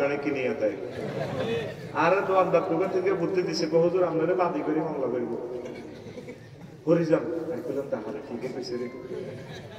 কিনিয়ে দেয়। আর দোকানদার দোকান থেকে বুদ্ধি দিছে হুজুর আপনারা বাদি করে মামলা করব হরি যান বললাম তাহলে ঠিকই কইছে রে,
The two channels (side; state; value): both; identical; correlation 1.00